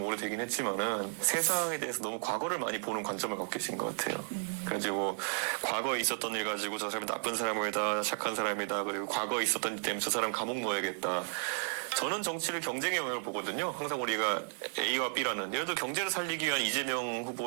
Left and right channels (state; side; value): silent; left; 55 dB below the other